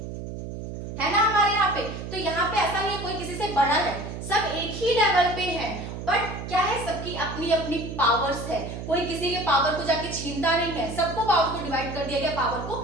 है ना हमारे यहाँ पे। तो यहाँ पे ऐसा नहीं है कोई किसी से बड़ा है, सब एक ही लेवल पे है, बट क्या है, सबकी अपनी अपनी पावर्स है, कोई किसी के पावर को जाके छीनता नहीं है, सबको पावर को डिवाइड कर दिया गया, पावर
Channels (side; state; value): right; noise; hum, 8 dB below the sound